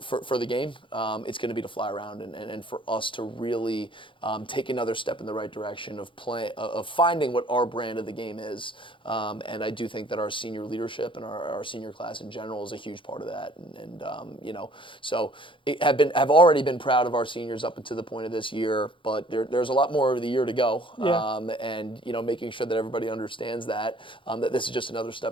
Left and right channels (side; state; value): right; late; 0.25 ms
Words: the game, it's going to be to fly around and for us to really take another step in the right direction of finding what our brand of the game is. And I do think that our senior leadership and our senior class in general is a huge part of that. So have already been proud of our seniors up until the point of this year, but there's a lot more of the year to go. Yeah. And making sure that everybody understands that this is just another